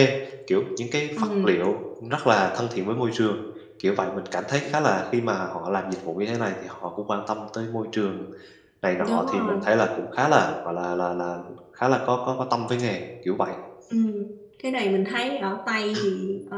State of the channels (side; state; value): both; identical; correlation 1.00